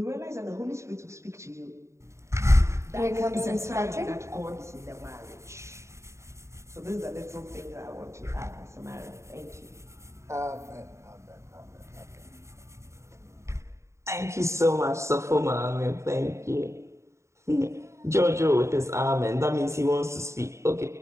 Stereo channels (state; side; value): late; left; 0.14 ms